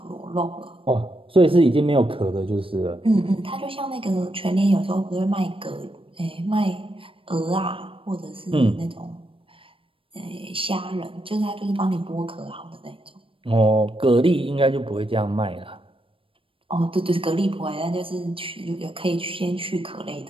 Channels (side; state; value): left; late; 0.26 ms